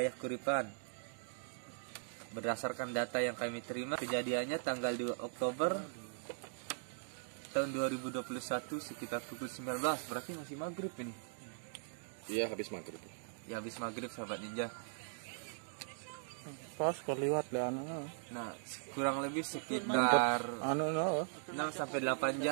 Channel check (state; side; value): silent; left; digital silence